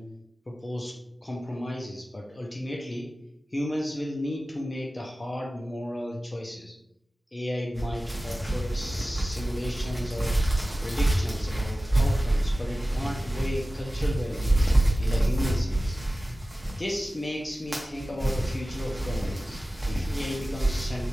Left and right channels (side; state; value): both; normal; correlation 0.96